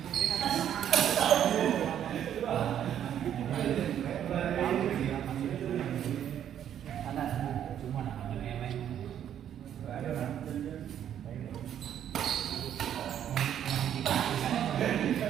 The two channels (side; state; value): left; quieter; 10.0 dB